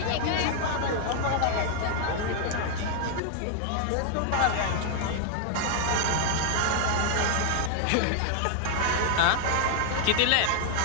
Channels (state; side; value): different; both; correlation 0.00